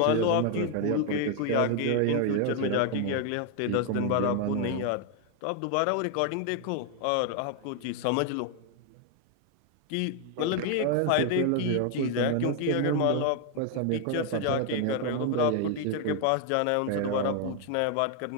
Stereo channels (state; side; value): different; both; correlation 0.00